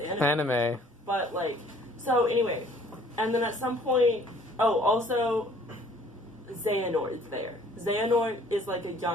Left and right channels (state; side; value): normal; both; correlation 0.56